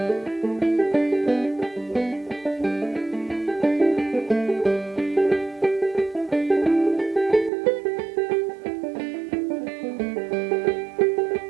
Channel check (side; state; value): left; drops out; at 7.5 s